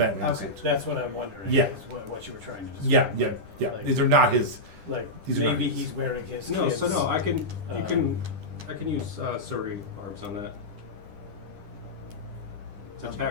Okay. suit. That's what I'm wondering. Yeah. Is what you were trying to describe. Yeah. Like- These are not his. Like These are maybe not- he's wearing his. No, kids', so no, I can use uh, Surrey barbs on that. It's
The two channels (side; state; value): left; late; 10 ms